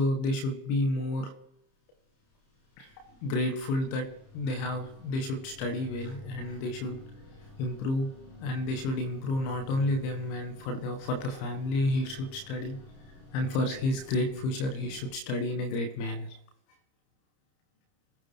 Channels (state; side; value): late; right; 30 ms